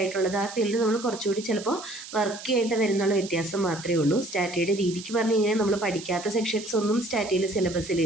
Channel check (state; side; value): noise; right; hiss, 13 dB below the sound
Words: ആ ഫീൽഡ് നമ്മൾ കുറച്ചുകൂടി ചിലപ്പോൾ വർക്ക് ചെയ്യേണ്ടി വരുന്നുള്ള വ്യത്യാസം മാത്രമേ ഉള്ളൂ. സ്റ്റാറ്റിയുടെ രീതിക്ക് പറഞ്ഞു കഴിഞ്ഞാൽ നമ്മൾ പഠിക്കാത്ത സെക്ഷൻസ് ഒന്നും സ്റ്റാറ്റിയിൽ